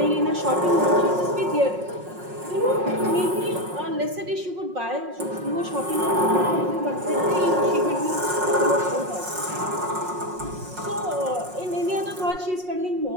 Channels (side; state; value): left; late; 5.5 ms